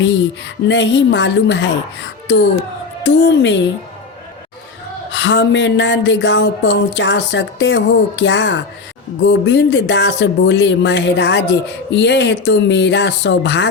नहीं मालूम है, तो तुम हमें नंदगांव पहुंचा सकते हो क्या? गोविंद दास बोले, महाराज यह तो मेरा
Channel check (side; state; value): right; quieter; 4.3 dB